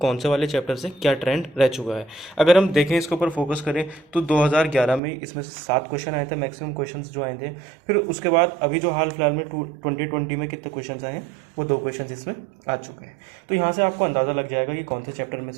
से वाले चैप्टर से क्या ट्रेंड रह चुका है। अगर हम देखें इसके ऊपर फोकस करें तो 2011 में इसमें से 7 क्वेश्चन आए थे, मैक्सिमम क्वेश्चंस जो आए थे। फिर उसके बाद अभी जो हाल फिलहाल में 2020 में कितने क्वेश्चंस आए हैं, वो 2 क्वेश्चंस इसमें आ चुके हैं। तो यहाँ से आपको अंदाज़ा लग जाएगा कि कौन से चैप्टर में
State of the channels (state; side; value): drops out; left; at 5.0 s